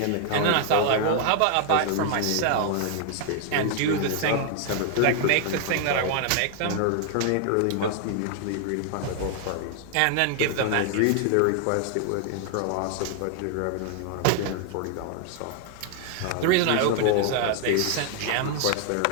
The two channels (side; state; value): both; different; correlation 0.00